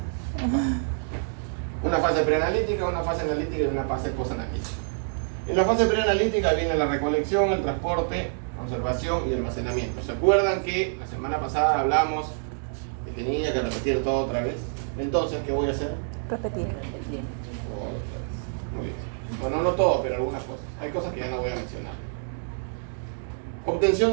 Una fase preanalítica, una fase analítica y una fase posanalítica. En la fase preanalítica viene la recolección, el transporte, conservación y almacenamiento. ¿Se acuerdan que la semana pasada hablamos de que tenía que repetir todo otra vez? Entonces, ¿qué voy a hacer? Repetir. Otra vez. Muy bien. Bueno, no todo, pero algunas cosas. Hay cosas que ya no voy a mencionar. Obtención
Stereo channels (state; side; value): silent; left; digital silence